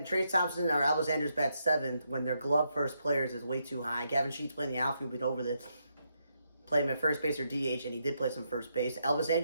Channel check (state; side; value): inverted; both; correlation -0.80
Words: Trey Thompson or Elvis Andrus bat seventh when their glove first players is way too high. Gavin Sheets playing the outfield, but over this. Play him at first base or DH, and he did play some first base. Elvis